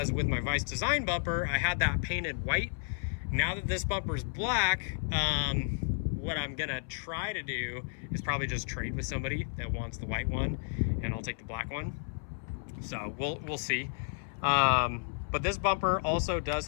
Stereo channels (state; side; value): silent; right; 56 dB below the other